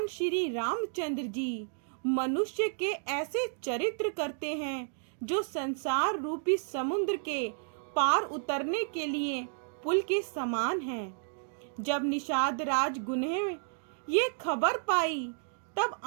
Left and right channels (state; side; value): silent; left; digital silence